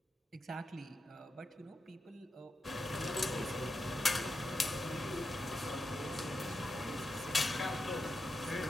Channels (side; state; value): both; normal; correlation 0.88